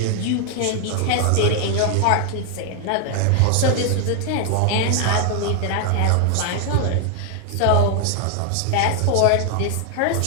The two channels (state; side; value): different; both; correlation 0.00